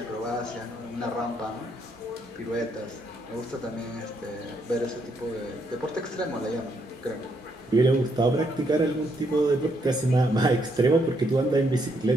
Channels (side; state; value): both; normal; correlation 0.75